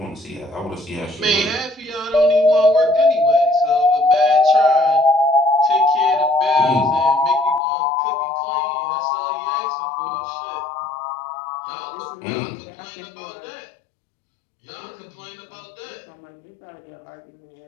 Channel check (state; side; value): drops out; right; at 7.6 s